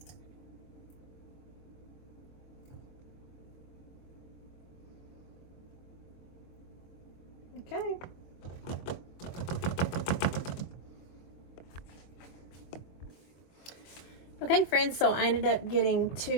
Okay. Okay, friends, so I ended up getting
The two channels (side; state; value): right; late; 24 ms